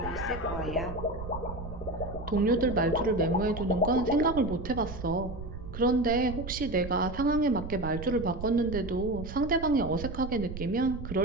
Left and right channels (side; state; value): right; noise; rumble, 9 dB below the sound